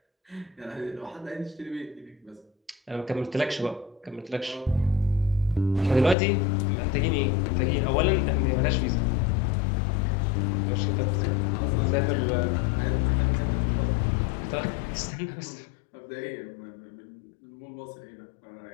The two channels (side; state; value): right; drops out; at 6.2 s